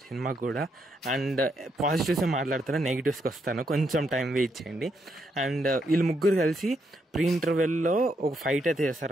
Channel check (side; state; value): both; normal; correlation 0.78